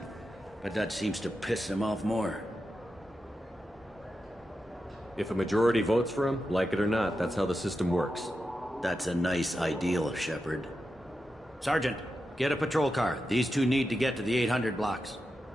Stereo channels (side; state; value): both; normal; correlation 0.89